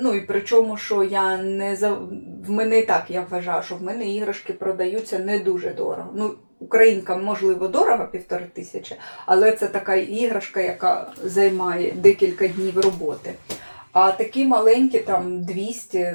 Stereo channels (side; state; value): both; inverted; correlation -1.00